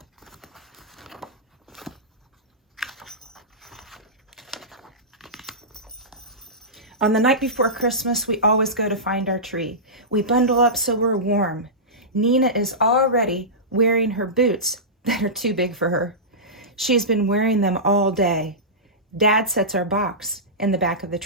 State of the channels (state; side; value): normal; both; correlation -0.17